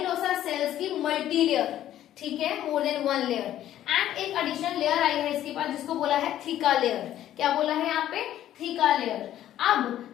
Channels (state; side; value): quieter; right; 12.2 dB